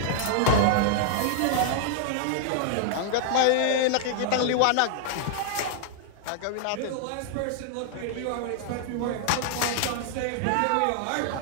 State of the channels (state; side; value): different; both; correlation -0.01